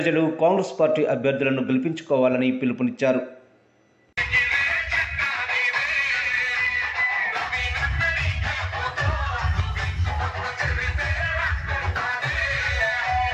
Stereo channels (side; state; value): both; identical; correlation 1.00